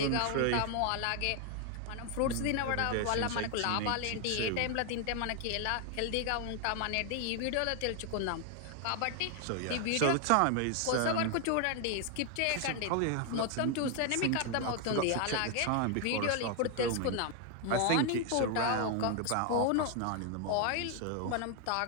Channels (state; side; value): different; both; correlation 0.00